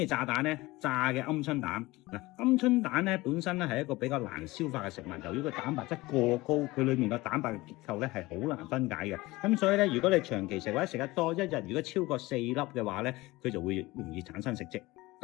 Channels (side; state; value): right; quieter; 20.3 dB